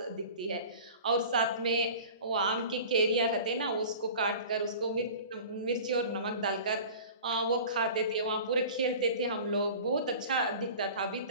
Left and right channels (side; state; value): both; inverted; correlation -0.40